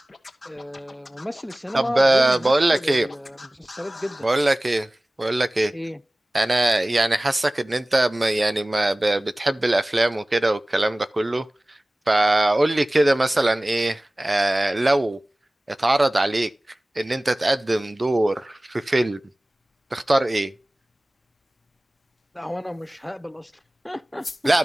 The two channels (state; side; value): normal; both; correlation 0.98